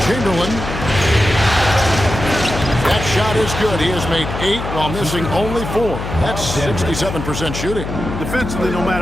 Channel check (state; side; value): noise; left; hum, 7 dB below the sound